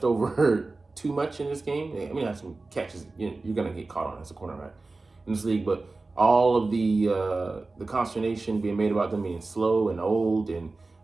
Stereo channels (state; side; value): quieter; left; 3.5 dB